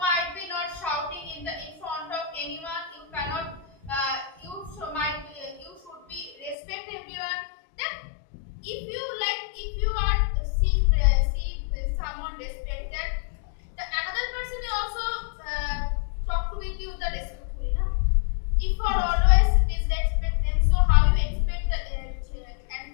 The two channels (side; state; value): right; drops out; at 6.6 s